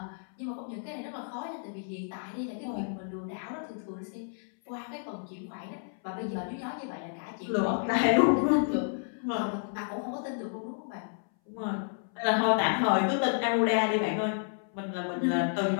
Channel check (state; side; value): silent; right; 57 dB below the other